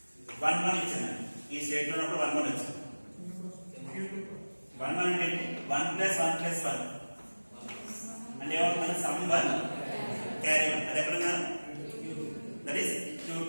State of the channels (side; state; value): both; inverted; correlation -1.00